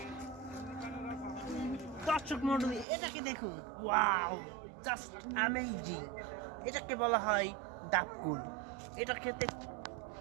দর্শক মন্ডলী, এটাকে দেখুন, ওয়াও, জাস্ট অ্যামেজিং। এটাকে বলা হয় ডাবকুল। এটা খেতে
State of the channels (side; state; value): left; drops out; at 2.9 s